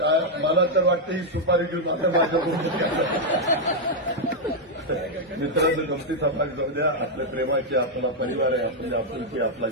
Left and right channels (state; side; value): normal; both; correlation -0.02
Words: मला तर वाटतं ही सुपारी घेऊन आता माझ्याकडून मित्रांनो गमतीचा भाग जाऊ द्या. आपल्या प्रेमाची, आपला परिवार आहे, आपली आपुलकी, आपला